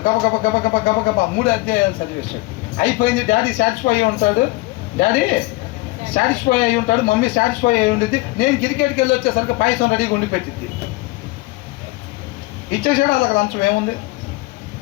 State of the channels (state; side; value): quieter; right; 21.0 dB